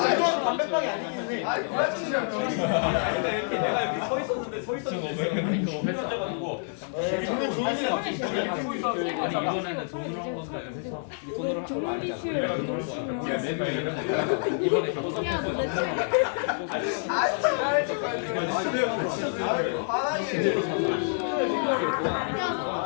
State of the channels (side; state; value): right; silent; digital silence